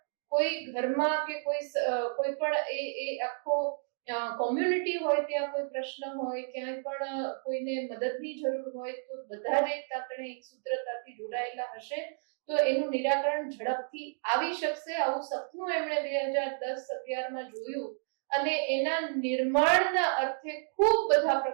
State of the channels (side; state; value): left; silent; digital silence